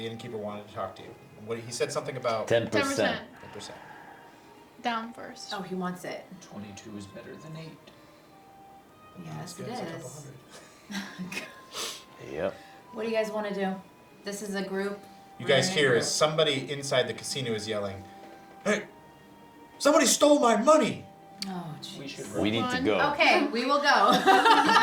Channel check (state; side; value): identical; both; correlation 1.00